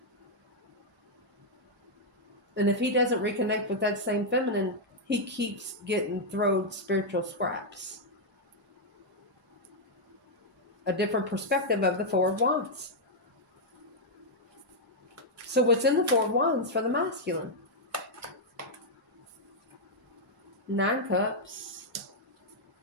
And if he doesn't reconnect with that same feminine, he keeps getting thrown spiritual scraps. A different perspective of the 4 of Wands. So what's in the 4 of Wands for the masculine? 9 Cups.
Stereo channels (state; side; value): normal; both; correlation -0.03